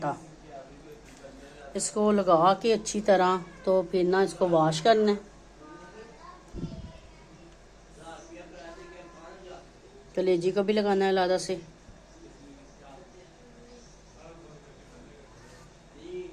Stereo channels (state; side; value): identical; both; correlation 1.00